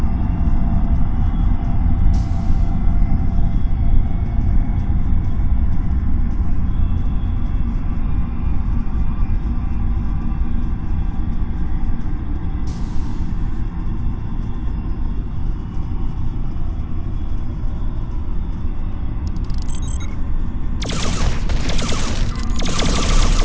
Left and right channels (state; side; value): identical; both; correlation 1.00